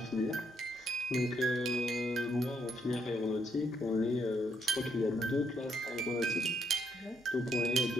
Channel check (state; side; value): normal; both; correlation 0.74